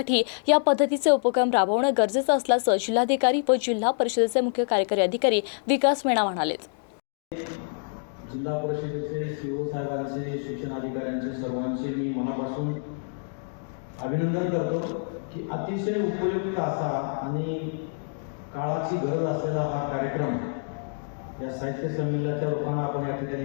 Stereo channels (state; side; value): silent; right; digital silence